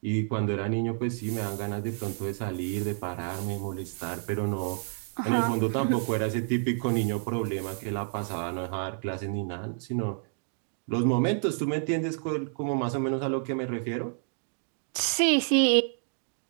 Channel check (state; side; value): silent; left; digital silence